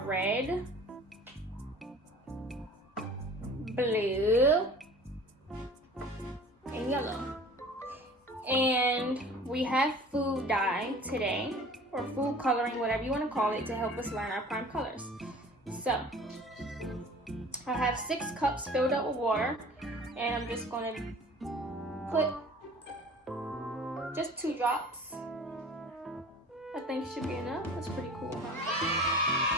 red, blue, and yellow. And we have food dye today, or food coloring, whatever you want to call it, to help us learn our prime colors. So I have 6 cups filled up with water, and I'm just going to put just 2 drops. I think should be enough. That's pretty cool,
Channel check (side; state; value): both; normal; correlation 0.44